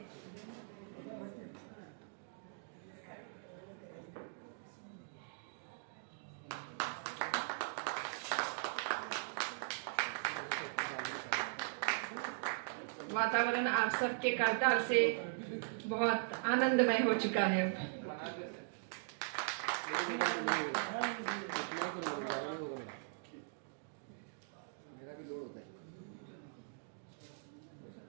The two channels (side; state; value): left; silent; digital silence